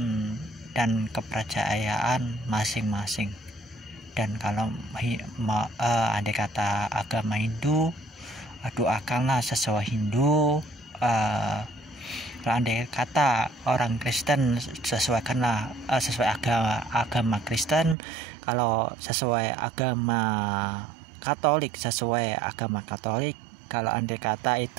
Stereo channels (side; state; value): left; drops out; at 17.9 s